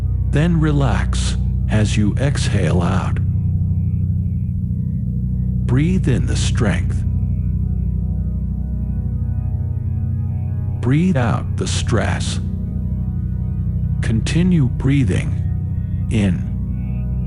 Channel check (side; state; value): both; identical; correlation 1.00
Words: Then relax as you exhale out. Breathe in the strength. Breathe out the stress. Continue breathing in